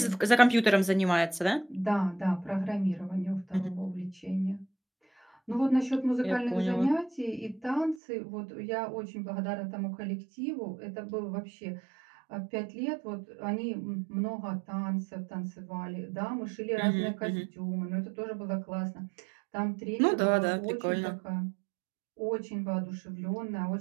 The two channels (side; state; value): left; drops out; at 8.0 s